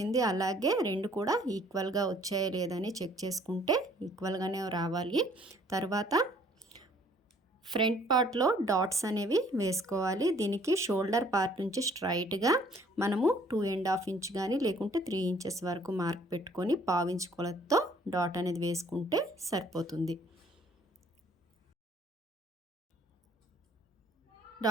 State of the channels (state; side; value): normal; both; correlation 0.59